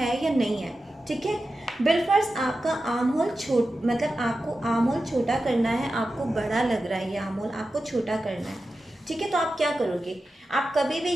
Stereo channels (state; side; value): normal; both; correlation 0.92